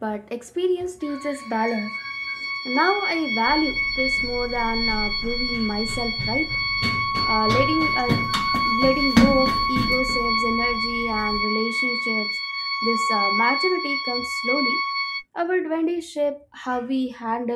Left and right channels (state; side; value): identical; both; correlation 1.00